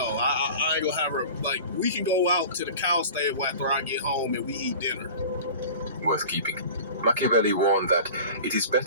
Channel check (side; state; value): both; inverted; correlation -0.38